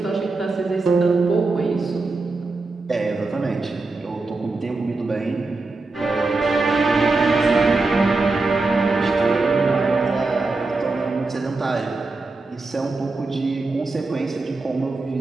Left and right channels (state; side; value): quieter; left; 3.5 dB